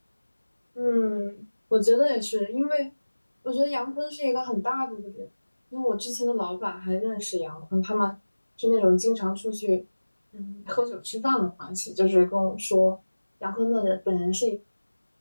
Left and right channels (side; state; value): both; inverted; correlation -1.00